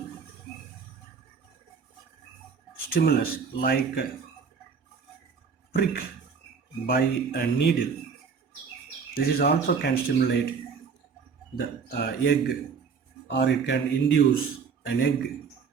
stimulus like prick by a needle. This is also can stimulate the egg, or it can induce an egg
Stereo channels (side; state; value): left; quieter; 5.9 dB